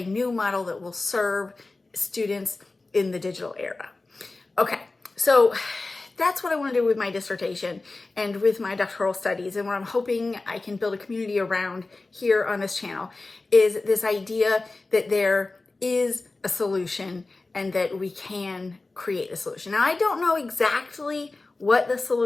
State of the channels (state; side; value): quieter; right; 3.4 dB